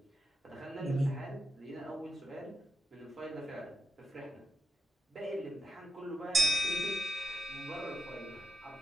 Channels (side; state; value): both; normal; correlation 0.86